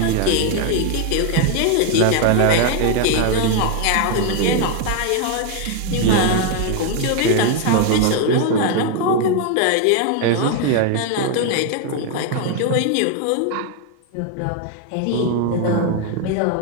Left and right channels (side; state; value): both; different; correlation 0.01